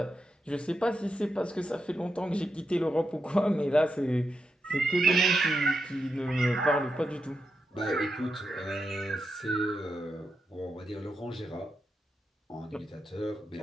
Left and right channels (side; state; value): both; normal; correlation 0.85